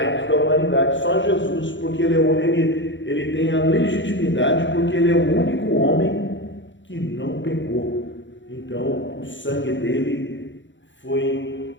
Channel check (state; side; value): late; right; 0.54 ms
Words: da humanidade, só Jesus, porque ele tem a legitimidade, porque ele é o único homem que não pecou. Então, o sangue dele foi